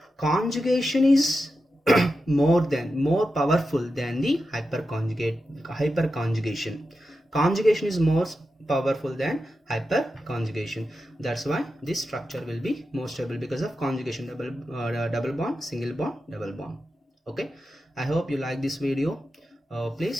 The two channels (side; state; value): both; normal; correlation 0.90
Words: conjugation is more powerful than the hyperconjugation. Conjugation is more powerful than hyperconjugation. That's why this structure will be more stable because of conjugation, double bond, single bond, double bond. Okay, I hope you like this video.